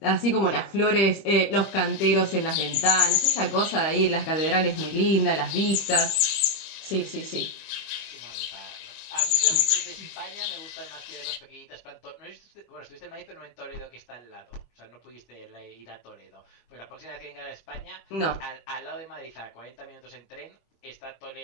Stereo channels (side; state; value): right; late; 26 ms